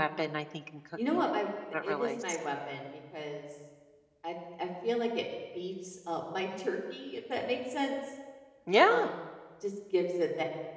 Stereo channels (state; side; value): identical; both; correlation 1.00